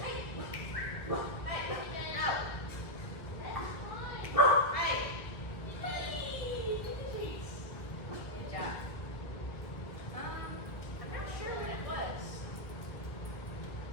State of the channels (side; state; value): right; late; 1.4 ms